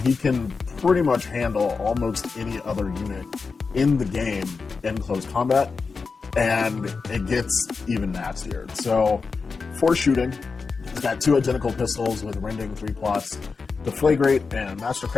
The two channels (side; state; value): right; quieter; 4.7 dB